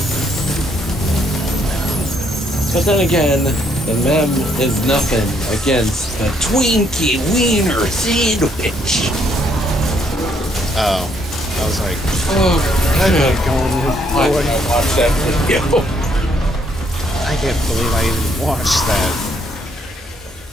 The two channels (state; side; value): normal; both; correlation 0.70